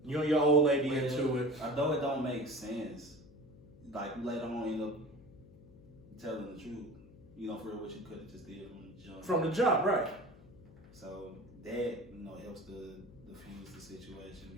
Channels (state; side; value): noise; left; hum, 21 dB below the sound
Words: You and your old lady into it. Although it don't make sense, like later on end up telling the truth. For what you could have just did from the jump. From the jump, right. So that, helps to diffuse the situation,